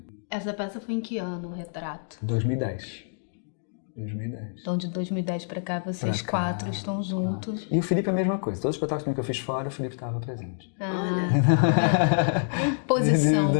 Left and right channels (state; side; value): silent; right; digital silence